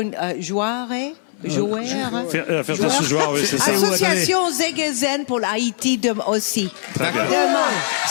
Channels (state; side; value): silent; right; 60 dB below the other